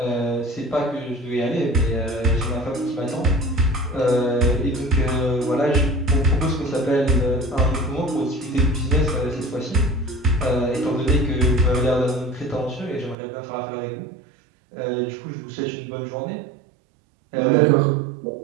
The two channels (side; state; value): left; drops out; at 13.2 s